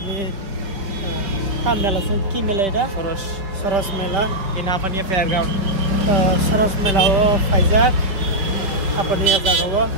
mela ki mela ida Soros mela ini apa nih fairground Soros mela wo Faizak apa nih jaga wo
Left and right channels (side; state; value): left; late; 5.2 ms